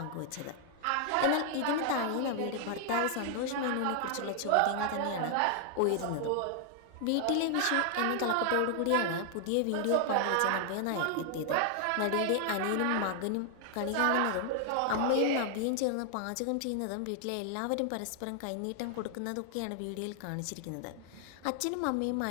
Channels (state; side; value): different; both; correlation 0.00